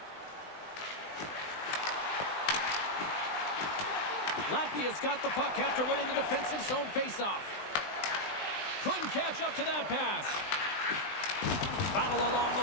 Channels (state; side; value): late; right; 20 ms